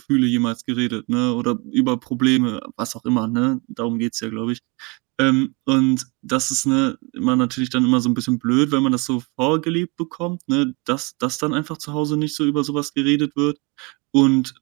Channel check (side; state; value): left; quieter; 28.5 dB